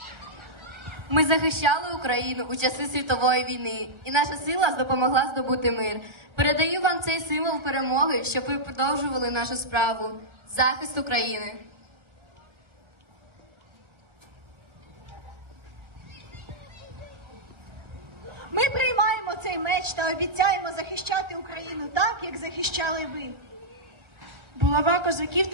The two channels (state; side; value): late; left; 1.4 ms